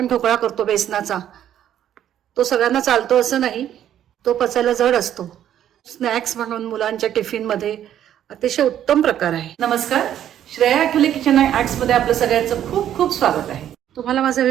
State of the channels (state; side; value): quieter; left; 10.8 dB